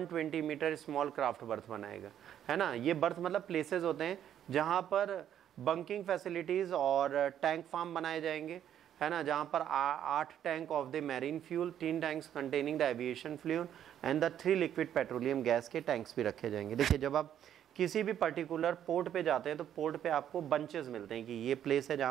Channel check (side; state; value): left; quieter; 10.2 dB